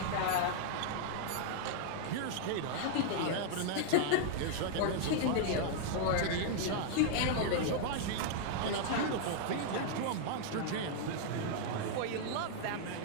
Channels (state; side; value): different; both; correlation -0.01